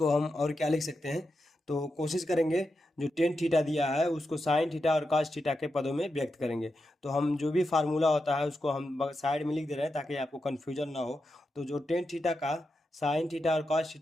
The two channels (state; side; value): normal; both; correlation 0.88